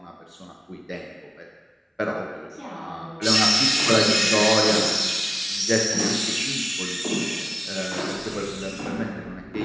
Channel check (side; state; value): both; identical; correlation 1.00